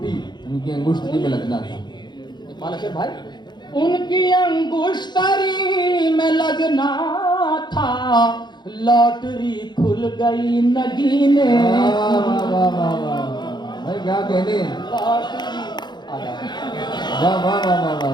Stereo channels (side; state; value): right; late; 0.21 ms